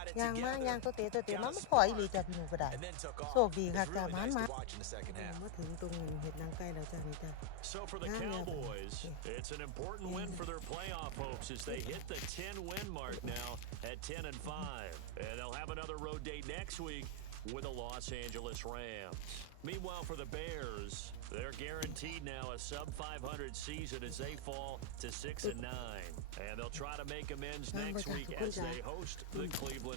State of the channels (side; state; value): both; different; correlation 0.00